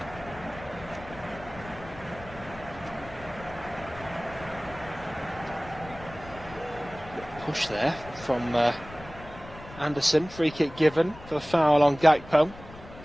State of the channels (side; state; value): left; noise; rumble, 17 dB below the sound